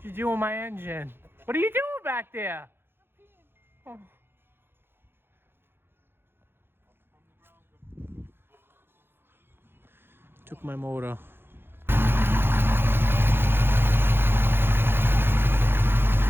you doing with my engine? What are you doing back there? Oh. Took my motor.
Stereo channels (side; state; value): left; late; 0.10 ms